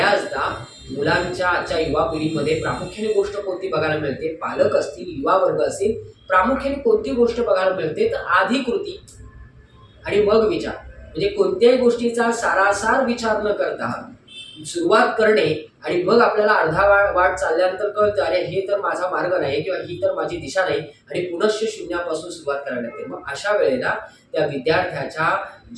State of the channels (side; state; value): both; identical; correlation 1.00